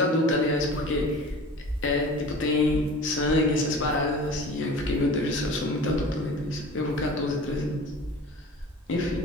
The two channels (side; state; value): both; normal; correlation 0.40